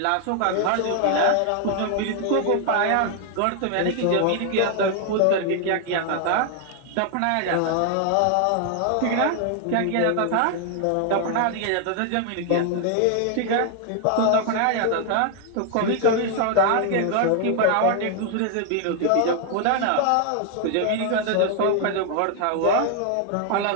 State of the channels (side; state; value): both; different; correlation 0.00